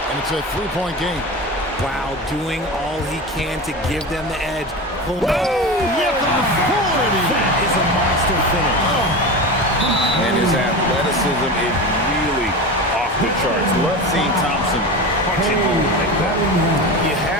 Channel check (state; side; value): normal; both; correlation 0.26